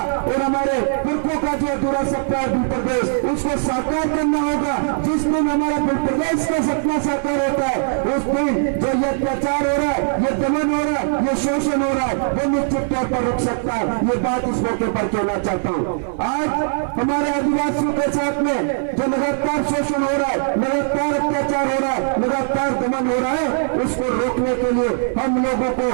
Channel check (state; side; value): silent; left; 66 dB below the other